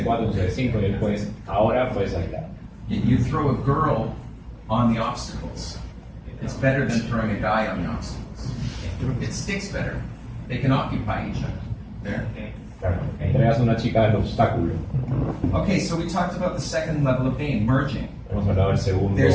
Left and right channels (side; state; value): both; identical; correlation 1.00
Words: 4, un set de 5, y después, ahora puedes aislar. You throw a girl on the obstacles. It's better than throwing a guy on the obstacles. It sticks better. They can occupy each other. There. Claro, entregas a una chica al obstáculo. Okay, so we talked about the second level of game, merging. Hemos hablado del segundo,